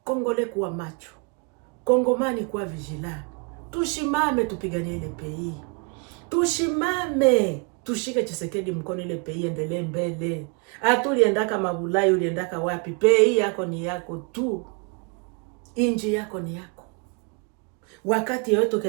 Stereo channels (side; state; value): left; quieter; 34.3 dB